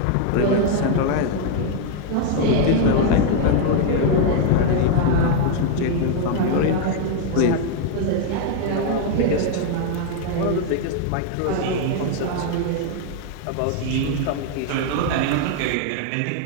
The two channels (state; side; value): different; both; correlation 0.00